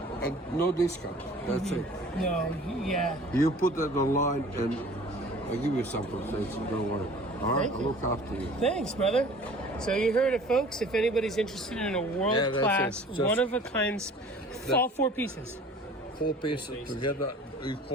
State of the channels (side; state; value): both; normal; correlation 0.47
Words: and no discount. That's it. No, yeah. You put that online, and I'll give you some protection. Don't worry. All right, I'll look after you. Thanks, brother. So you heard it, folks. If anybody's interested in a world-class, one-of-a-kind, all 4 pieces. 4 pieces together, you